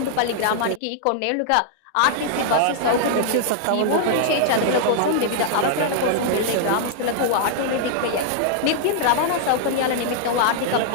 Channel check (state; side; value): different; both; correlation -0.01